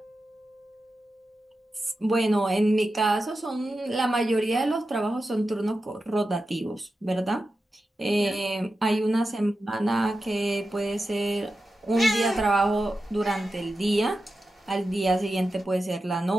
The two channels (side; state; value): both; normal; correlation 0.91